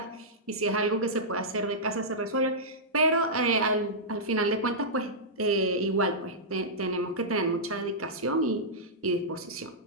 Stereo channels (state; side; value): normal; both; correlation -0.13